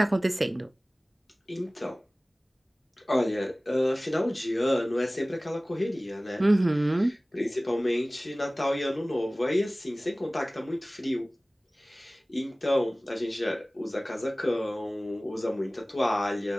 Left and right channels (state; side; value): normal; both; correlation 0.98